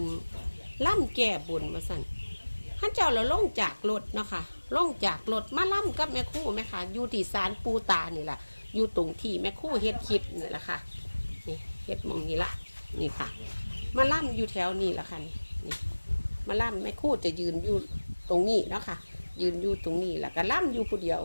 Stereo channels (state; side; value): inverted; both; correlation -1.00